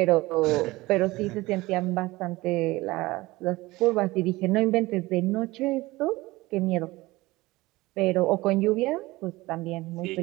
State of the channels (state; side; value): quieter; left; 20.2 dB